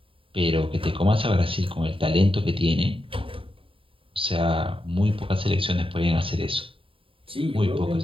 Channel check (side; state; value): left; late; 0.26 ms